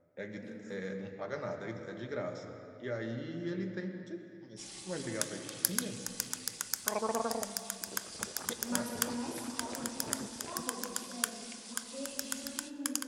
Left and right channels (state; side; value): identical; both; correlation 1.00